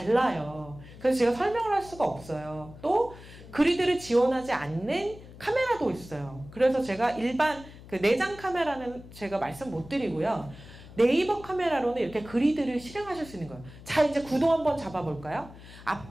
그래서 제가 설명을 할 수가 없어요. 또 그리드를 지원하지 않는 카메라도 있어요. 그래서 제가 일반 그 내장 카메라는 제가 말씀 못 드리고요. 네이버 카메라로는 이렇게 그리드를 실행하실 수 있는 거예요. 자, 이제 구도 한번 잡아볼까요?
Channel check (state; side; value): noise; left; hum, 18 dB below the sound